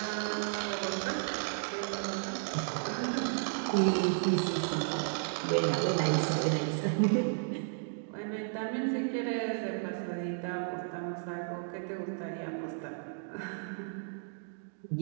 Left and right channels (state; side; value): silent; left; digital silence